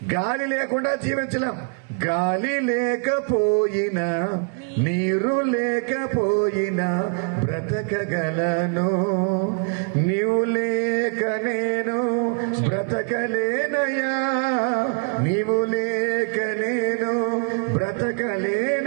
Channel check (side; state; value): left; quieter; 39.8 dB